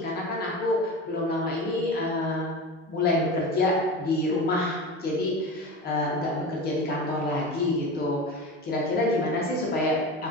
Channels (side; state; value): both; normal; correlation 0.29